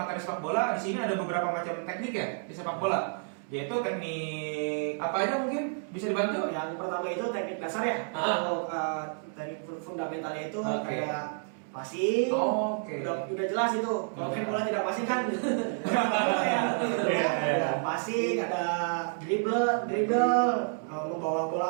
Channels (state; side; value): silent; left; 58 dB below the other